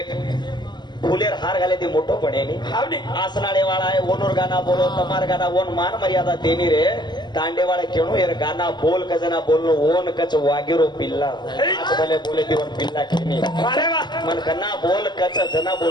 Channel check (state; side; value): late; right; 0.21 ms